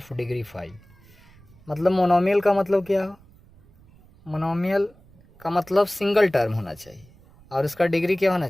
degree 5। मतलब मोनोमियल का मतलब क्या हो, मोनोमियल का मतलब सिंगल टर्म होना चाहिए और इसका डिग्री क्या होना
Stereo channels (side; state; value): right; noise; rumble, 27 dB below the sound